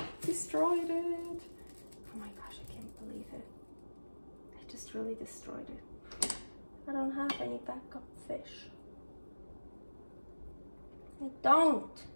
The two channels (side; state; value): both; inverted; correlation -1.00